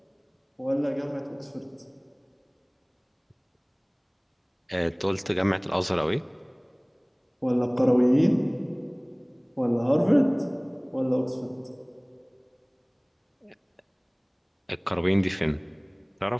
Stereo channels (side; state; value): both; identical; correlation 1.00